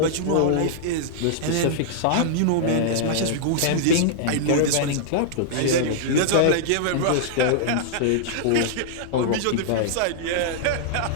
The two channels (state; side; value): different; both; correlation -0.01